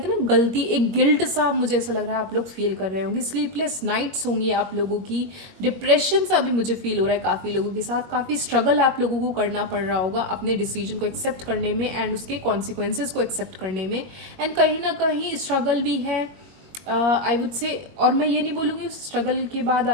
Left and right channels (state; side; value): late; left; 22 ms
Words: हैं ना गलती, एक गिल्ट सा मुझे ऐसा लग रहा है आप लोग फील कर रहे होंगे। स्लीपलेस नाइट्स होंगी आप लोगों की, डिप्रेशन सा भी मुझे फील हो रहा है काफ़ी लोगों के साथ। काफ़ी स्ट्रगल आप लोगों को करना पड़ रहा होगा अपने डिसीजन को एक्सेप्ट करने में एंड उसके कॉन्सिक्वेंसेस को एक्सेप्ट करने में। एंड कहीं ना कहीं स्ट्रगल भी है, आई वुड से। और मैं ये नहीं बोलूँगी स्ट्रगल के बाद